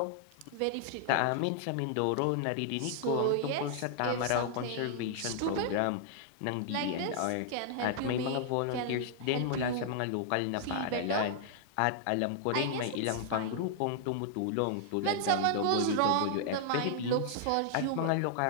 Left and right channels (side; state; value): both; different; correlation -0.01